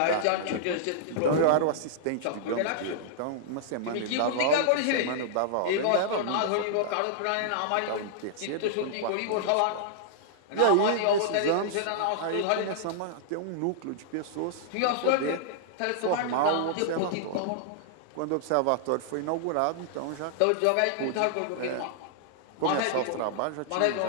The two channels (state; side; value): different; both; correlation -0.01